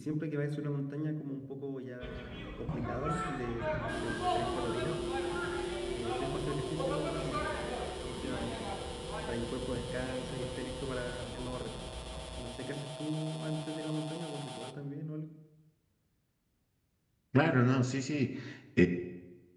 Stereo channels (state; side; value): identical; both; correlation 1.00